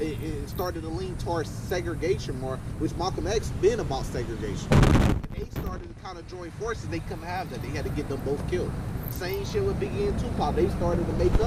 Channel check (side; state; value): both; identical; correlation 1.00